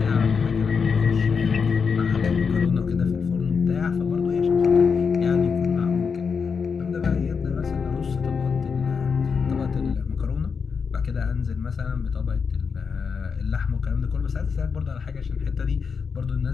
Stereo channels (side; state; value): right; quieter; 5.7 dB